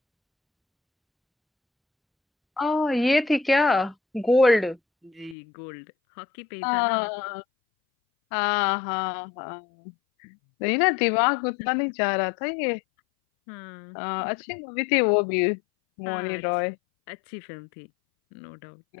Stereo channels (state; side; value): drops out; right; at 5.4 s